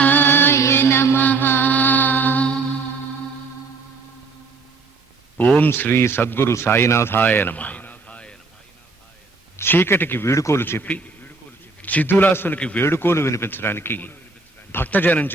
నమః. ఓం శ్రీ సద్గురు సాయినాథాయ నమః. చీకటికి వీడుకోలు చెప్పి చిద్దులాసునికి వేడుకోలు వినిపించడానికి భక్తజనం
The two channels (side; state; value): left; quieter; 4.1 dB